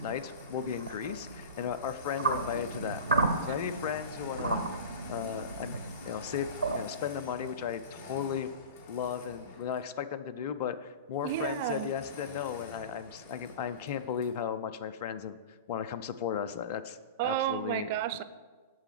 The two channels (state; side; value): inverted; both; correlation -0.30